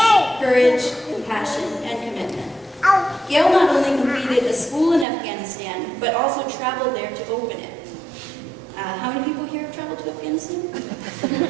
courage, compassion, and commitment. Gail not only completed a school in Afghanistan, but also traveled there to open it. How many people here have traveled to Afghanistan?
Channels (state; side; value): drops out; left; at 5.1 s